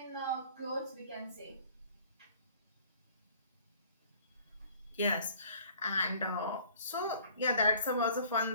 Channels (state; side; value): inverted; both; correlation -0.54